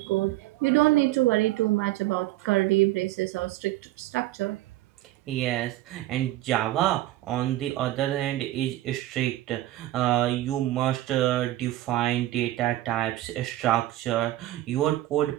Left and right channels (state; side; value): quieter; left; 15.7 dB